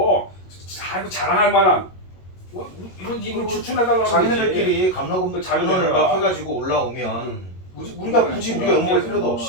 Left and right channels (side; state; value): right; late; 22 ms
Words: 아이고 자랑할 만한 이런 인물 추천해달라고 자기네들끼리 감로금도 자료를 막 해가지고 올라오면 우리가 굳이 우리가 연구할 필요도